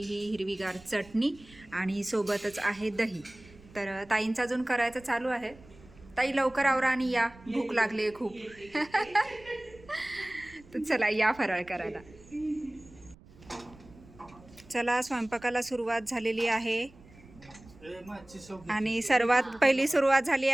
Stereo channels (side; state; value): right; noise; rumble, 23 dB below the sound